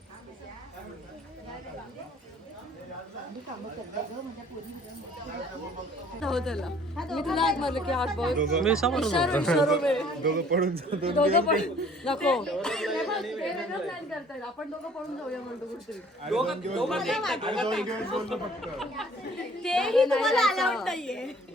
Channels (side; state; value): both; normal; correlation 0.55